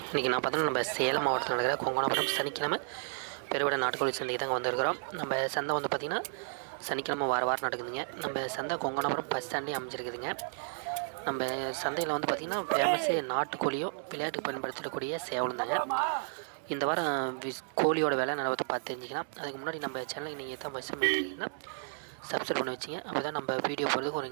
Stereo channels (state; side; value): silent; left; digital silence